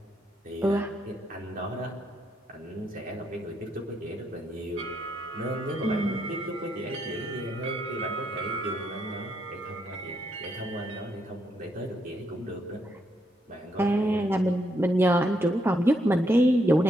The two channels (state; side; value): normal; both; correlation 0.77